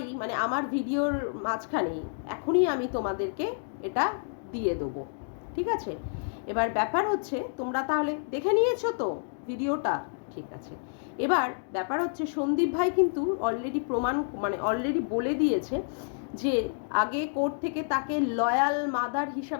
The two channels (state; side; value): silent; right; digital silence